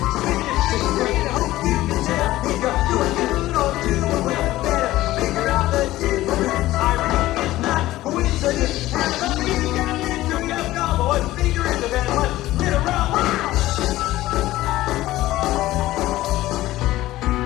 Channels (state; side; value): quieter; right; 16.2 dB